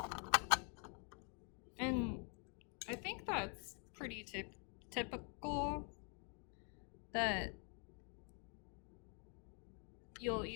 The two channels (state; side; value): quieter; right; 38.1 dB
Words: And I think that's pretty typical that you'll